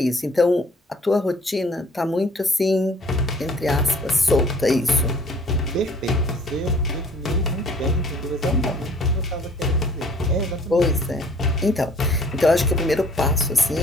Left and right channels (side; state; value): both; normal; correlation 0.55